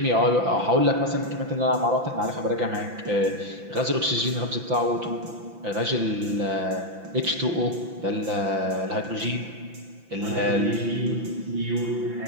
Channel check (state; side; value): late; left; 5.9 ms